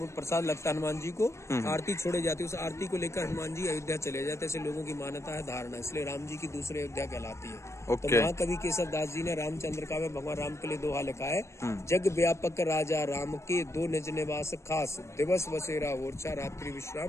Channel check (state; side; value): late; right; 0.13 ms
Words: प्रसाद लगता हनुमान जी को। आरती छोड़े जाती है, उस आरती को लेकर हनुमान जी अयोध्या चले जाते, ऐसे लोगों की मान्यता है, धारणा, इसलिए राम जी की दूसरी अयोध्या कहलाती है। तो महाकवि केशव दास जी ने रामचंद्र का में भगवान राम के लिए दोहा लिखा है, जग व्यापक राजा राम के 2 निज निवास खास, दिवस बसेरा ओरछा, रात्रि